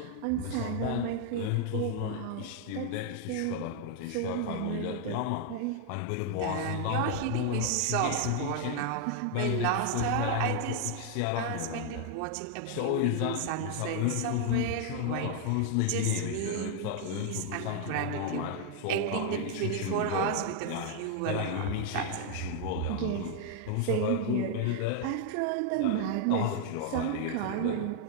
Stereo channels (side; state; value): both; different; correlation 0.00